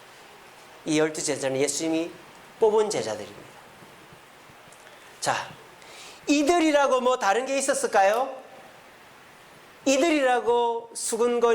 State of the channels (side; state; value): both; identical; correlation 1.00